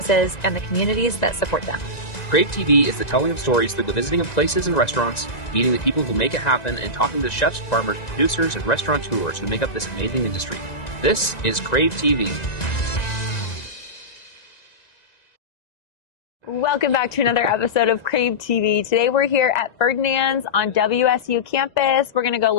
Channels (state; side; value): late; right; 1.9 ms